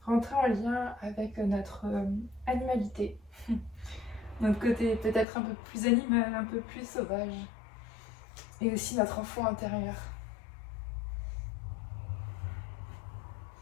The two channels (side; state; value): right; drops out; at 5.2 s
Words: rentrer en lien avec notre animalité, notre côté peut-être un peu plus animal, un peu plus sauvage, et aussi notre enfant intérieur.